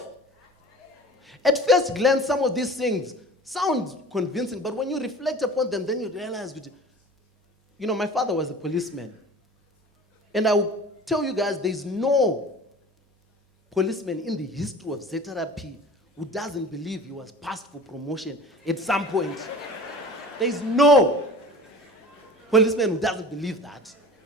At first glance, some of these things sound convincing, but when you reflect upon them, then you realize, my father was a policeman. And I will tell you guys, there's no policeman in the history of ZRP who doesn't believe he was passed for promotion at some point. There's no policeman who doesn't believe that.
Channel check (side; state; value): both; normal; correlation 0.41